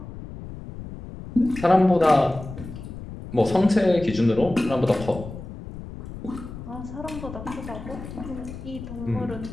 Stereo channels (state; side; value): noise; left; rumble, 12 dB below the sound